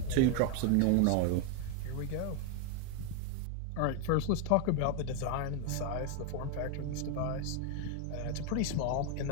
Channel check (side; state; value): both; different; correlation 0.01